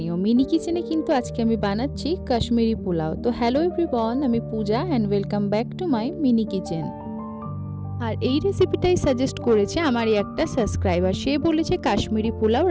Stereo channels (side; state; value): both; identical; correlation 1.00